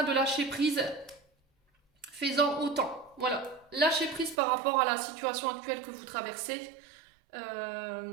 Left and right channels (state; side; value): drops out; left; at 4.4 s